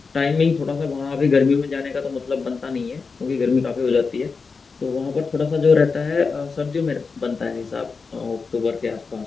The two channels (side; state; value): right; quieter; 4.7 dB